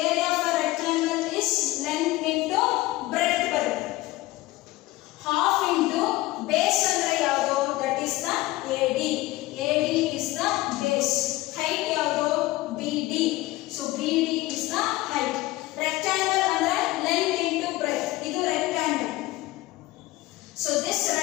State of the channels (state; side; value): quieter; right; 18.5 dB